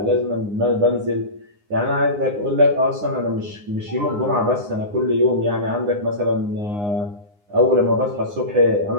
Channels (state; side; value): late; left; 9.7 ms